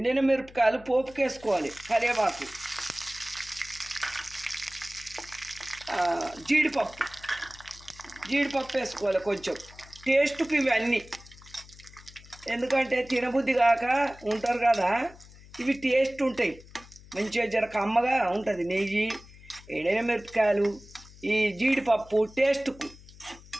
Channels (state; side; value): noise; left; hum, 21 dB below the sound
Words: మిరపకాయలు పోపుకి వేసుకోవాలి. కరివేపాకు, జీడిపప్పు వేసుకోవాలి కొంచెం టేస్ట్కి. ఇవన్నీ ఎందుకంటే తినబుద్ధి కాక ఉంటారు కదా, ఇవి టేస్ట్ ఉంటాయి. మంచిగా జర కమ్మగా ఉంటుంది. నెయ్యి, ఎండిన మిరపకాయలు, ఈ జీడిపప్పు టేస్ట్కు